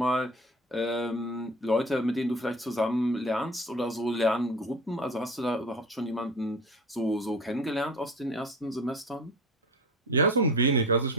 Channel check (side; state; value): both; normal; correlation 0.35